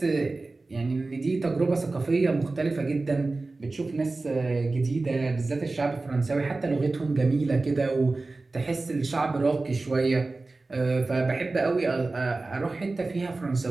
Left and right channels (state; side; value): quieter; left; 3.4 dB